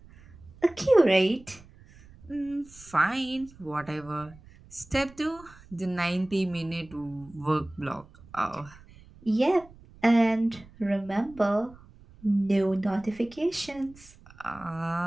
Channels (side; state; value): right; noise; rumble, 23 dB below the sound